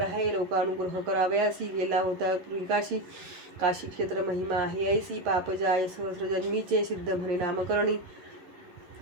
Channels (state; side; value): late; left; 11 ms